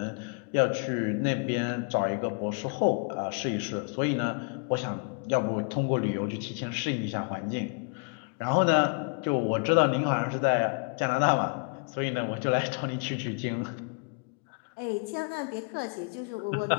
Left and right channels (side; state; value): right; quieter; 37.9 dB